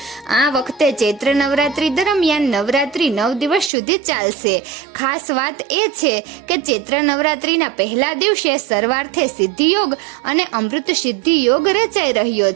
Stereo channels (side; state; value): left; drops out; at 3.7 s